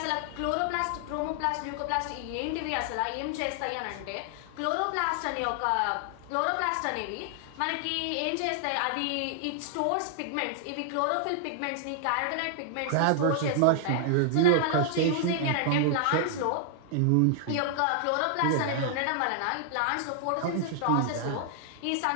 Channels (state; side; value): different; both; correlation 0.00